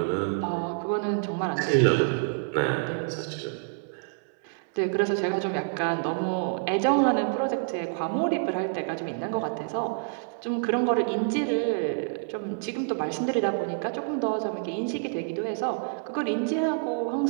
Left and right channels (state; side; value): silent; left; 60 dB below the other